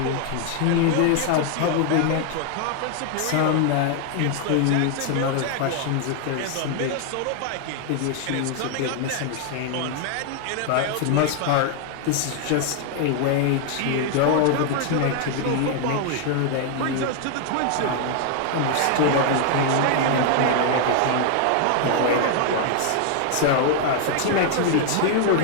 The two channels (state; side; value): different; both; correlation 0.00